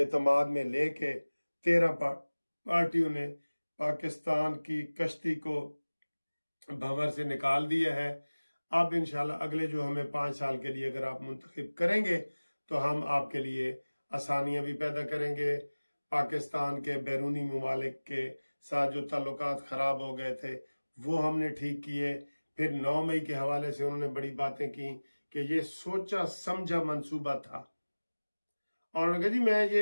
में लेके 13 पार्टियों ने पाकिस्तान की कश्ती को भंवर से निकाल दिया है। अब इंशाल्लाह अगले जो हमें 5 साल के लिए अगर आप मुंतखब करेंगे तो हम आपके लिए आसानियां भी पैदा करेंगे, पाकिस्तान के बैरूनी ममालिक के साथ जो ताल्लुकात ख़राब हो गए थे वो हमने ठीक किए। फिर 9 मई के हवाले से उन्होंने बड़ी बातें की कि ये सोचा समझा मंसूबा था, और उन्होंने कहा जी मैं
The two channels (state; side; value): inverted; both; correlation -1.00